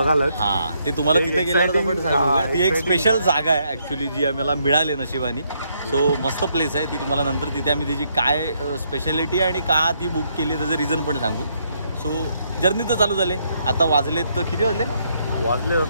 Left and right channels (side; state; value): both; inverted; correlation -0.74